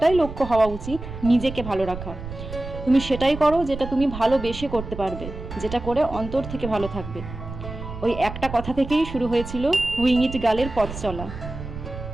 লক্ষ্য হওয়া উচিত, নিজেকে ভালো রাখা। তুমি সেটাই করো যেটা তুমি ভালোবেসে করতে পারবে, যেটা করে অন্তর থেকে ভালো থাকবে। ওই একটা কথা থেকেই শুরু হয়েছিল উইং ইট গার্লের পথ চলা।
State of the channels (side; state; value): right; noise; rumble, 10 dB below the sound